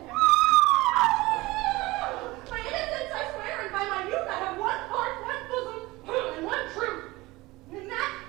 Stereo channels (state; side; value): quieter; left; 20.7 dB